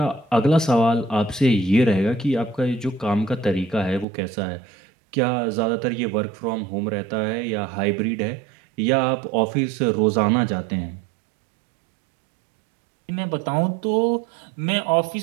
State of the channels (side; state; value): left; drops out; at 4.0 s